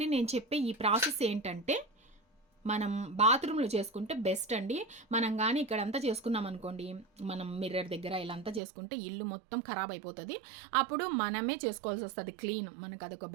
నేను చెప్పే ఈ ప్రాసెస్ ఏంటంటే మనం బాత్రూంలో చేసుకుంటే బెస్ట్ అండి. మనం కానీ ఇక్కడంతా చేసుకున్నాం అనుకోండి, మనం మిర్రర్ దగ్గర ఇలా అంతా చేసుకుంటే ఇల్లు మొత్తం ఖరాబ్ అయిపోతుంది. అప్పుడు మనమే చేసుకోవాల్సి వస్తుంది క్లీన్. మనకు అదొక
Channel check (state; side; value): drops out; left; at 8.6 s